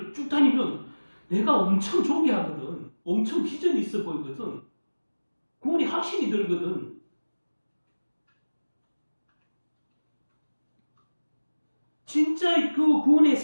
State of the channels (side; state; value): both; inverted; correlation -1.00